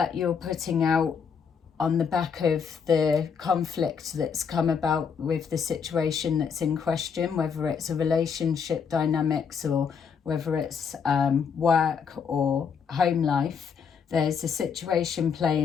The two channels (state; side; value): quieter; right; 6.4 dB